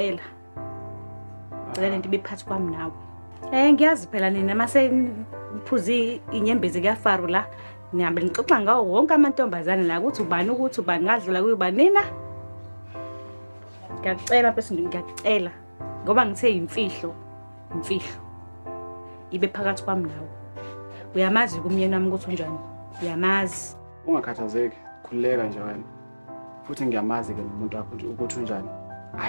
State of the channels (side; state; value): both; inverted; correlation -1.00